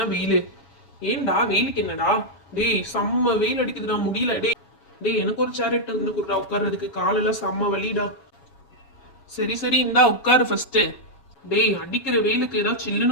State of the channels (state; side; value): late; right; 7.2 ms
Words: வெயிலு. ஏன்டா வெயிலுக்கு என்னடா? டேய் செம்ம வெயில் அடிக்குதுடா, முடியல. டேய் எனக்கு ஒரு சேர் எடுத்து வந்து கொடுறா உட்கார்றதுக்கு, காலெல்லாம் செம்ம வலிடா. சரி இந்தா உட்காரு ஃபர்ஸ்ட். டேய் அடிக்கிற வெயிலுக்கு ஏதாவது